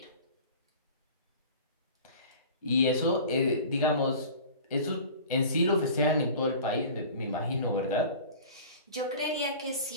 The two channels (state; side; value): inverted; both; correlation -0.40